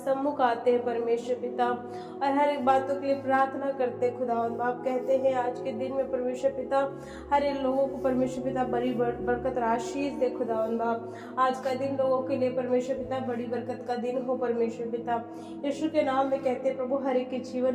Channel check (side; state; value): both; identical; correlation 1.00